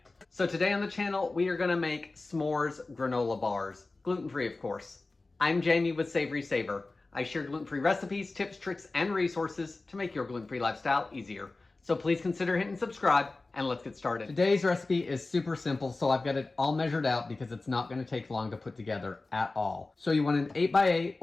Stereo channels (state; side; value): quieter; right; 3.4 dB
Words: So today on the channel, we are going to make s'mores granola bars, gluten-free of course. I'm Jamie with SavorySaver. I share gluten-free recipes, tips, tricks, and resources to make your gluten-free lifestyle easier. So please consider hitting subscribe and let's get started. Today's recipe is super simple, so I've got it all measured out because it's not going to take long to put together at all. So you want an 8x8